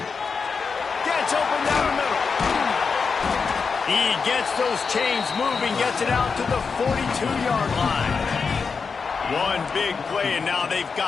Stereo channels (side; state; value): right; quieter; 5.3 dB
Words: Gets open down the middle. He gets those chains moving, gets it out to the 42-yard line. One big play, and now they've